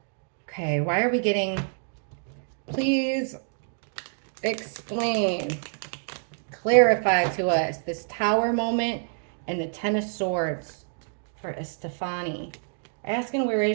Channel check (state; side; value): silent; left; 60 dB below the other